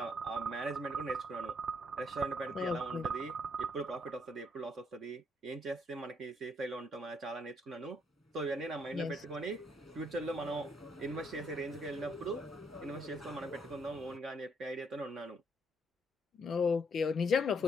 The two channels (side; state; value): both; normal; correlation 0.72